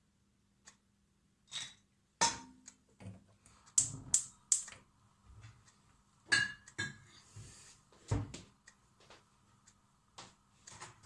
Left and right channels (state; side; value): identical; both; correlation 1.00